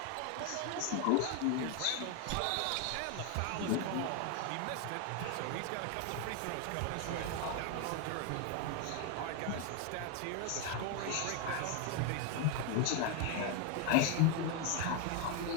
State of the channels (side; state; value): both; different; correlation 0.01